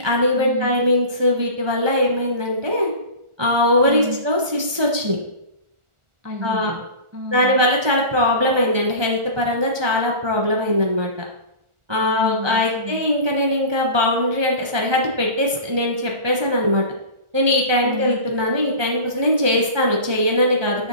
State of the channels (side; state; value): left; late; 1.2 ms